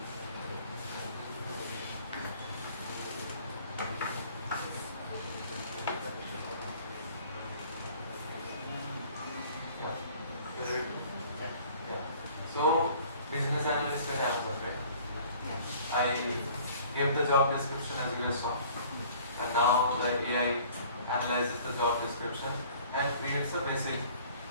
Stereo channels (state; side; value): inverted; both; correlation -0.52